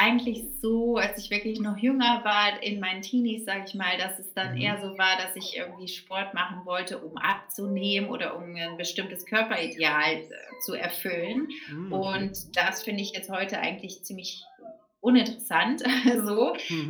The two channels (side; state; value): both; identical; correlation 1.00